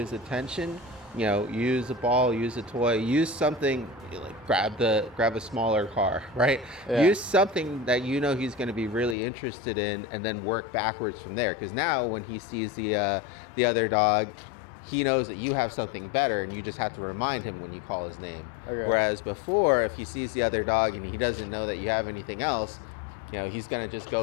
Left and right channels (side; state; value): right; drops out; at 9.2 s